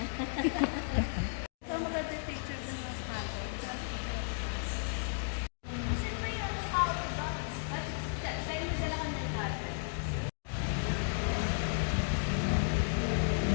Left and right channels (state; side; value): silent; right; digital silence